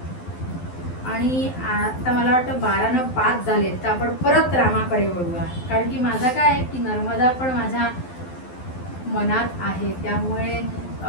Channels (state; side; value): late; right; 12 ms